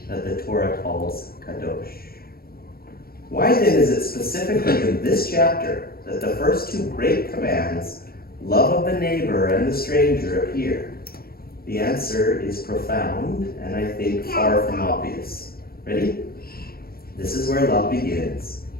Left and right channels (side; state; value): right; late; 0.44 ms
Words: that the Torah calls kadosh. Why then is it specifically in this chapter that the first two great commands, love of the neighbor and the stranger, appear? The answer is profound and I think far from obvious. Ready? This is where love begins